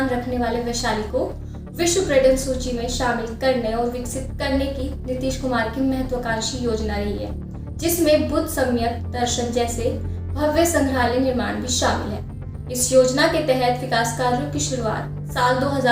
रखने वाले वैशाली को विश्व पर्यटन सूची में शामिल करने और विकसित करने की नीतीश कुमार की महत्वाकांक्षी योजना रही है, जिसमें बुद्ध सम्यक दर्शन जैसे भव्य संग्रहालय निर्माण भी शामिल है। इस योजना के तहत विकास कार्यों की शुरुआत साल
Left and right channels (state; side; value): identical; both; correlation 1.00